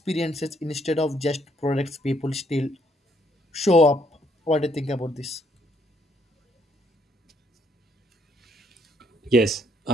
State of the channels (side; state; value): both; normal; correlation 0.70